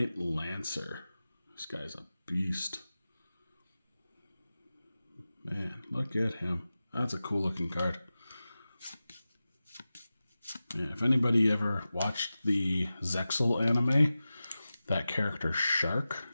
Lancer. This guy's a beast. Man, look at him. That's a cool looking card. Yeah, if anybody ever watched the Zexal anime, that character Shark.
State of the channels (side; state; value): both; inverted; correlation -0.95